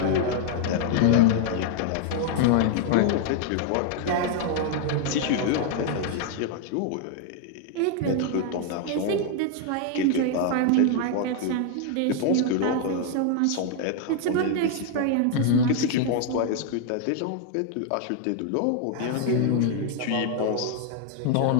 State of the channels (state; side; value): different; both; correlation 0.00